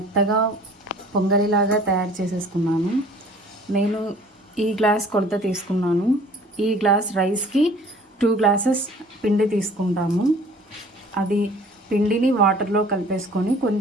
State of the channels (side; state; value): both; normal; correlation 0.50